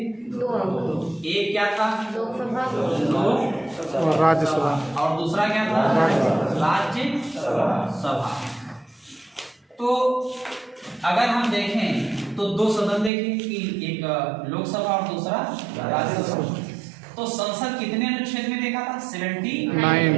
2 अंग। एक क्या था लोकसभा, लोक राज्यसभा, और दूसरा क्या था राज्यसभा। तो अगर हम देखें तो 2 सदन देखें कि एक लोकसभा और दूसरा राज्यसभा। तो संसद कितने अनुच्छेद में देखा था,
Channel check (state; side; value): drops out; left; at 13.1 s